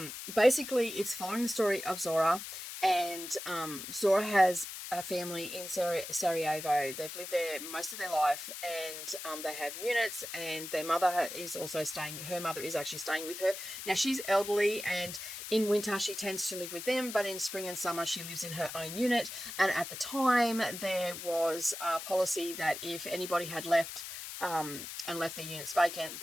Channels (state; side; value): noise; left; hiss, 9 dB below the sound